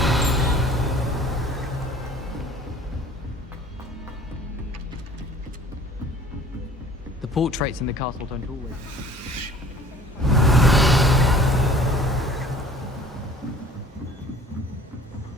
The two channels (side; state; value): both; normal; correlation 0.49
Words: The portraits in the castle don't always.